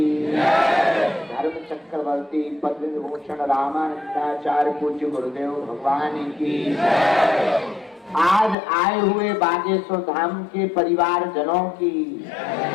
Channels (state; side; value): drops out; right; at 8.6 s